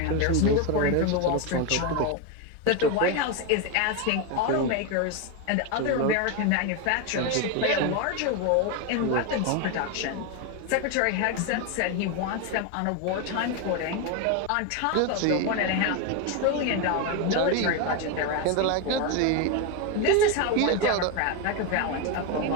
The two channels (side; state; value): both; different; correlation 0.02